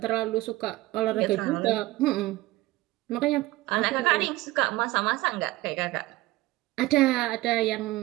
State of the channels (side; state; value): left; quieter; 18.4 dB